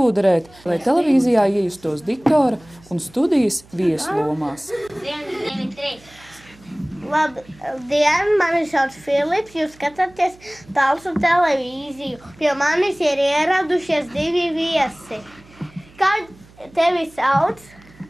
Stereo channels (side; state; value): right; noise; hum, 25 dB below the sound